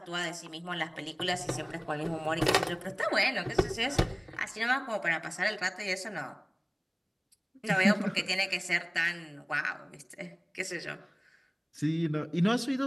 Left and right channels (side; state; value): both; identical; correlation 1.00